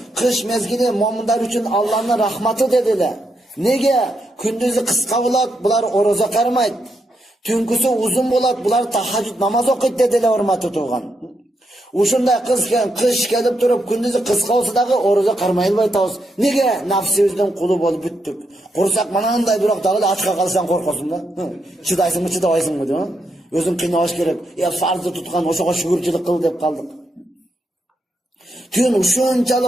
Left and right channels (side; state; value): both; normal; correlation 0.81